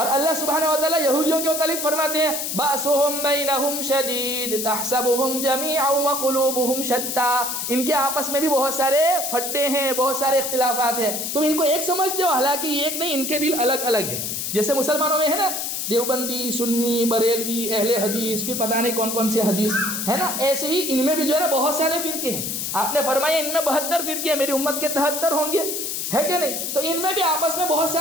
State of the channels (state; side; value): noise; left; hiss, 3 dB below the sound